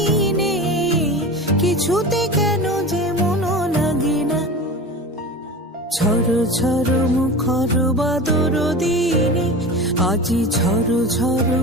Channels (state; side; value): normal; both; correlation 0.31